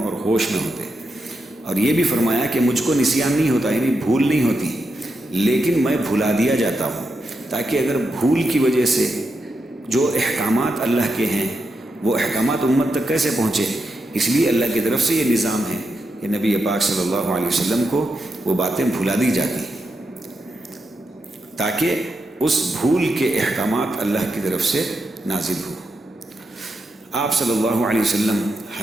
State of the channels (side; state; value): both; normal; correlation 0.85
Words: ہوش میں ہوتے، اور یہ بھی فرمایا کہ مجھ کو نسیان نہیں ہوتا، یعنی بھول نہیں ہوتی، لیکن میں بھلا دیا جاتا ہوں تاکہ اگر بھول کی وجہ سے جو احکامات اللہ کے ہیں وہ احکامات امت تک کیسے پہنچے، اس لیے اللہ کی طرف سے یہ نظام ہے کہ نبی پاک صلی اللہ علیہ وسلم کو وہ باتیں بھلا دی جاتی تاکہ اس بھول کے احکامات اللہ کی طرف سے نازل ہو۔ آپ صلی اللہ علیہ وسلم